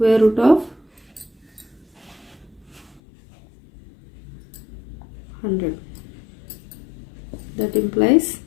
root of 100. That implies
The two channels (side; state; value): right; drops out; at 3.0 s